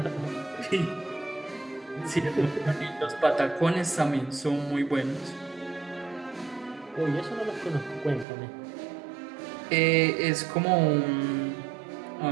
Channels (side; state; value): left; drops out; at 8.2 s